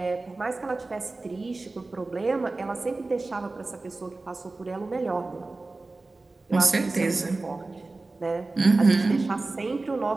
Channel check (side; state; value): left; quieter; 3.3 dB